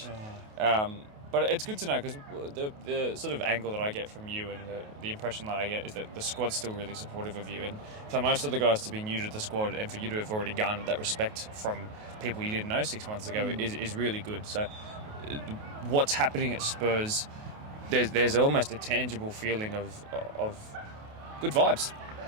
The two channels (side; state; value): left; late; 28 ms